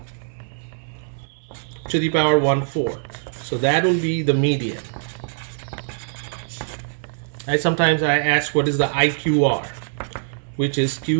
to the power 1/4. So that will be the median. Sometimes I ask, what is the IQR, which is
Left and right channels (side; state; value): left; silent; 64 dB below the other